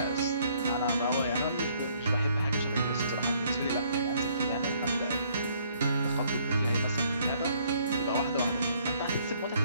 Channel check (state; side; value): inverted; both; correlation -0.65